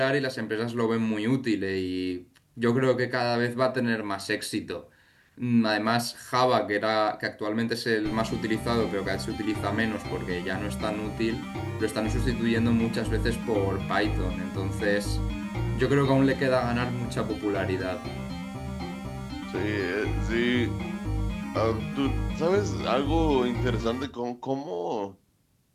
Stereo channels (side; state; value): both; identical; correlation 1.00